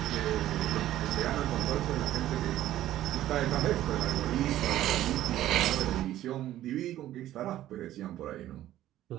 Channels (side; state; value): left; quieter; 13.4 dB